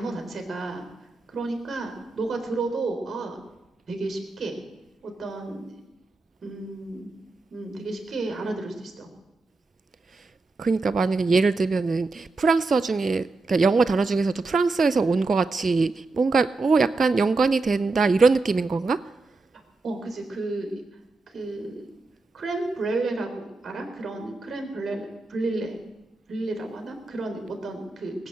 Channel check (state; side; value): quieter; left; 3.6 dB